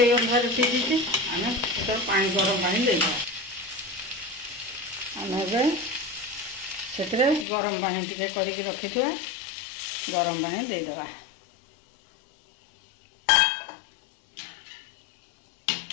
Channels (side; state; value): right; drops out; at 7.5 s